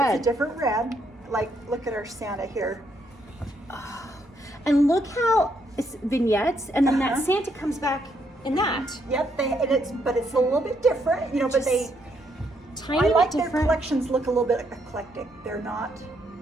It's a different red. Like, look at our Santa here. And look how it's vignettes, and then that Santa comes back in that. Yep, but it's a little bit different, you know, but Just tiny I bit like their different. collections look a little bit eclectic. They're not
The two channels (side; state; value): both; normal; correlation 0.74